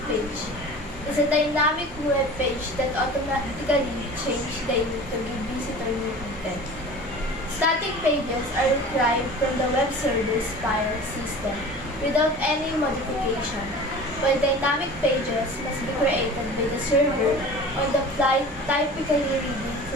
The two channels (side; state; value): both; normal; correlation 0.39